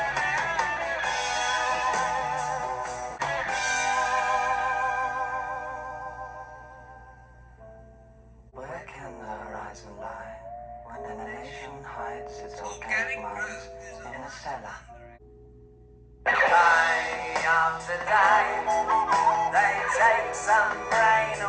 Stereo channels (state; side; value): identical; both; correlation 1.00